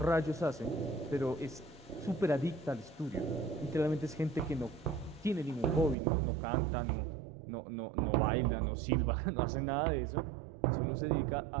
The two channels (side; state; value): left; drops out; at 6.0 s